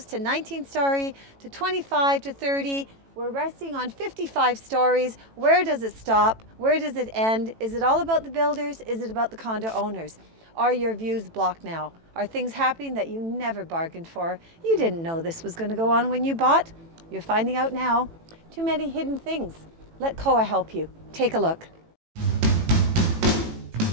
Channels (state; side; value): late; left; 18 ms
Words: to 19-story to 25 to 30. We're resting on 55 stories. Where does it stop? Where does it end? Is it all about the builders? Is it about the condo owners? Are your views blocked now? Are things happening that you never bargained for? You didn't know this was going to go on when you bought. You're finding out now. Too many hidden things. Let COA help you. Take a look.